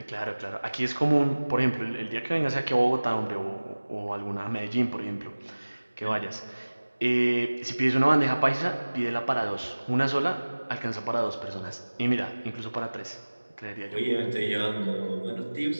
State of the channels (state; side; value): inverted; both; correlation -1.00